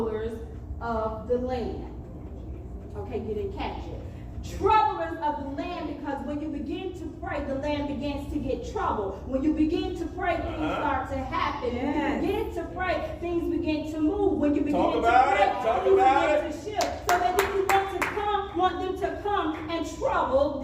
of the land. Okay, you didn't catch it. Troublers of the land, because when you begin to pray, the land begins to get trouble. When you begin to pray, things start to happen. When you begin to pray, things begin to move. When you begin to pray, things begin to shift. So that then you want them to come and trouble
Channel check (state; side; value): identical; both; correlation 1.00